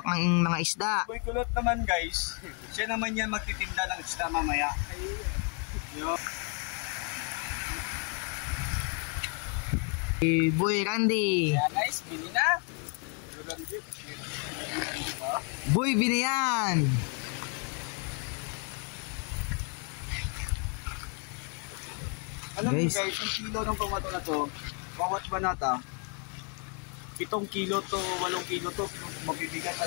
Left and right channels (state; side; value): quieter; right; 38.0 dB